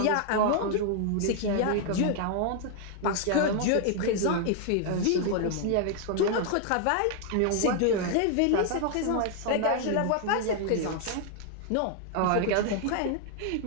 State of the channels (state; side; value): different; both; correlation 0.00